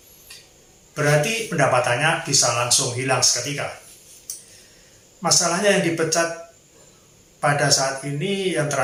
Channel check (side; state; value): both; identical; correlation 1.00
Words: Berarti pendapatannya bisa langsung hilang seketika. Masalahnya yang dipecat pada saat ini, yang